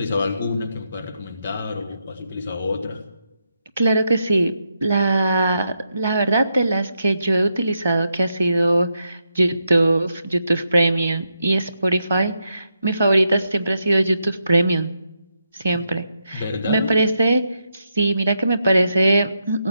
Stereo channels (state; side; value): inverted; both; correlation -0.83